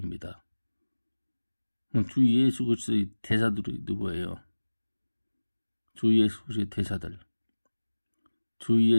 주 예수 그리스도의 대사들이 누구예요? 주 예수 그리스도의 대사들, 주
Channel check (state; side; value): inverted; both; correlation -1.00